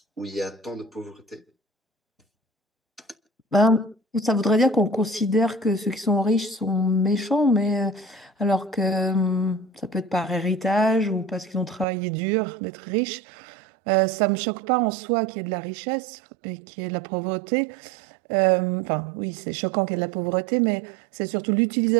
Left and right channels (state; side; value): drops out; left; at 11.9 s